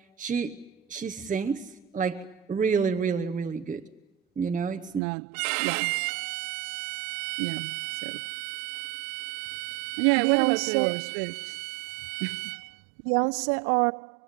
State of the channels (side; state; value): left; drops out; at 5.0 s